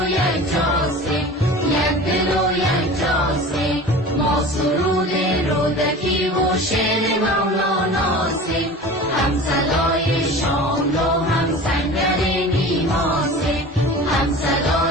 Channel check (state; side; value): normal; both; correlation 0.37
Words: یک جاستیم، یک دل و یک جاستیم. ما سرود رودکی و شعر مولاناسیم، هم صدای